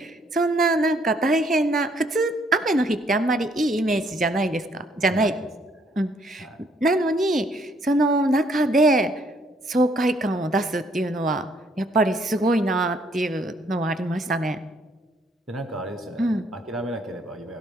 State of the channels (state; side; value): normal; both; correlation 0.67